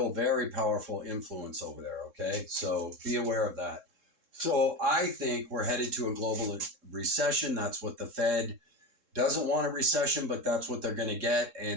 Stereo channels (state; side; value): late; left; 3.7 ms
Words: very powerful influence over there, okay? So be aware of that. So I think we're headed to a global recession. That's what the Fed doesn't want a recession, but that's what they're going to get.